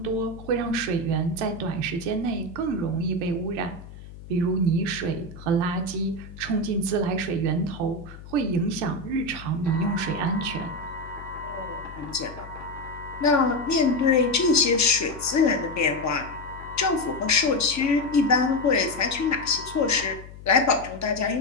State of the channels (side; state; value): left; noise; hum, 16 dB below the sound